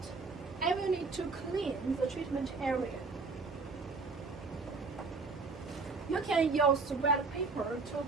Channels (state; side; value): quieter; left; 4.2 dB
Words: I will need to clean the treatment area. You can use wet paper